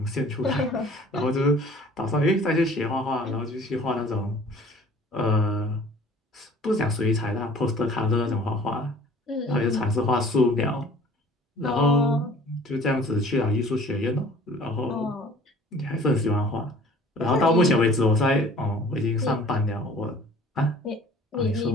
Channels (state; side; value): normal; both; correlation 0.50